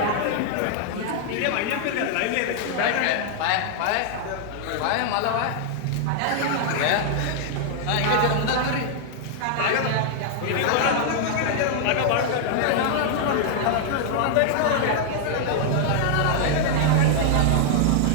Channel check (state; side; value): different; both; correlation -0.01